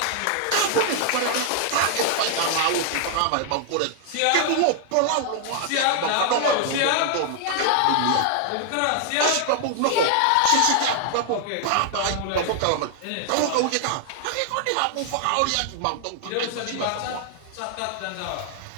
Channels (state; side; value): different; both; correlation 0.00